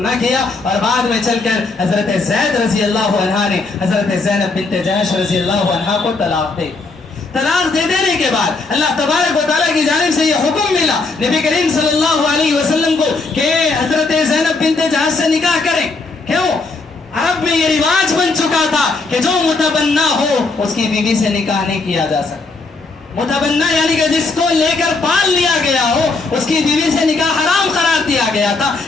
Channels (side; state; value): right; quieter; 3.8 dB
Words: کیا اور بعد میں چل کر حضرت زید رضی اللہ عنہا نے حضرت زینب بنت جحش رضی اللہ عنہا کو طلاق دے. طلاق دے دینے کے بعد اللہ تبارک و تعالیٰ کی جانب سے یہ حکم ملا نبی کریم صلی اللہ علیہ وسلم کو کہ حضرت زینب بنت جحش سے نکاح کریں. کیوں؟ عرب میں یہ رواج بن چکا تھا کہ جو متبنہ ہو اس کی بیوی سے نکاح نہیں کیا جا سکتا. متبنہ یعنی کہ جس کو لے کر پال لیا گیا ہو اس کی بیوی سے نکاح حرام قرار دیا گیا تھا.